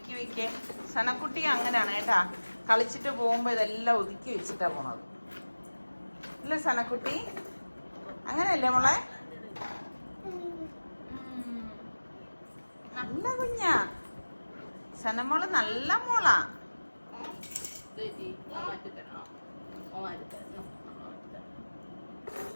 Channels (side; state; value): both; inverted; correlation -1.00